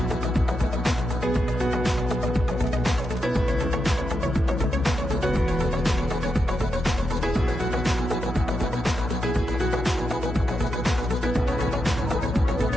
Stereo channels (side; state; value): both; normal; correlation 0.86